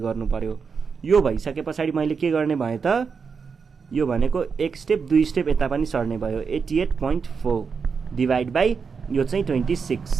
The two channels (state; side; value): quieter; left; 5.6 dB